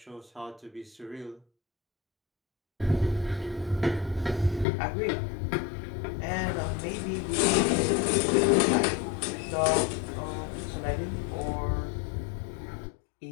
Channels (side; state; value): right; drops out; at 4.7 s